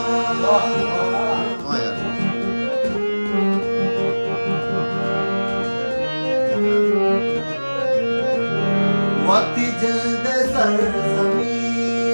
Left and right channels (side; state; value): both; inverted; correlation -1.00